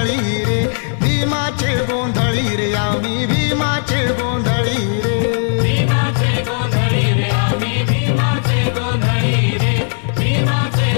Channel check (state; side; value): silent; right; digital silence